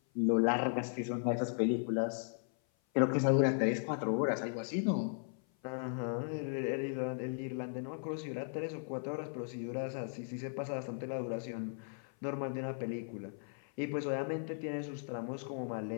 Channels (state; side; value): silent; right; 53 dB below the other